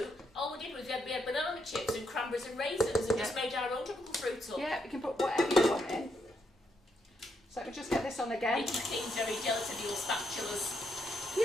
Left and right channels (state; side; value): normal; both; correlation 0.78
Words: all we did was we had banana chips and cranberries and raisins and just made our own tropical fruit up. Yeah, we can put whatever you want in. So let me just get this on again. Making things very jealous of your spatulas.